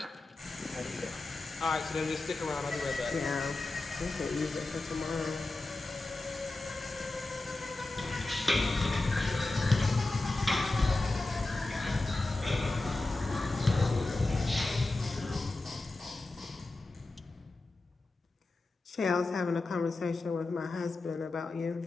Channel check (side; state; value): right; quieter; 3.1 dB